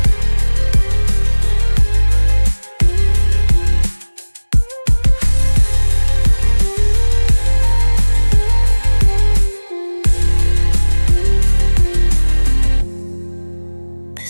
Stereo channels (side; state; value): both; inverted; correlation -1.00